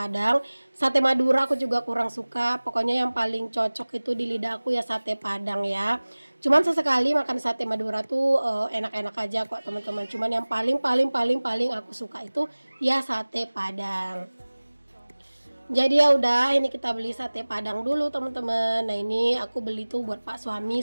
Sate Madura aku juga kurang suka. Pokoknya yang paling cocok itu di lidah aku ya sate Padang ya. Cuman sesekali makan sate Madura tuh enak-enak aja kok teman-teman. Cuman yang paling aku suka itu ya sate Padang. Jadi ya udah, ini kita beli sate Padang dulu teman-teman. Nah ini aku beli tuh buat pak suami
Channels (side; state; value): both; inverted; correlation -1.00